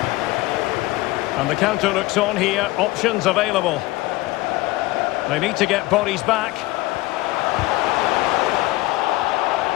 And the counter looks on here, options available. They need to get bodies back.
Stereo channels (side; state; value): right; quieter; 19.4 dB